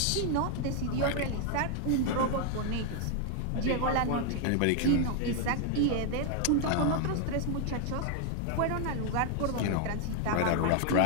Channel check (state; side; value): different; both; correlation 0.00